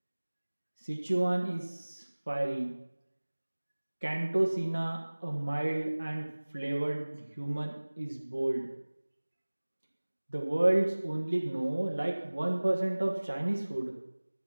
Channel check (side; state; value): both; inverted; correlation -1.00